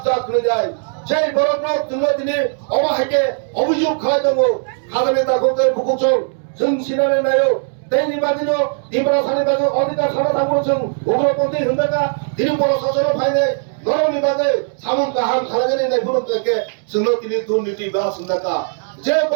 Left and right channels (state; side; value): silent; left; 67 dB below the other